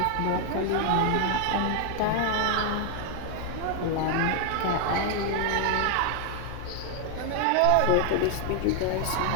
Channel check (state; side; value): different; both; correlation 0.00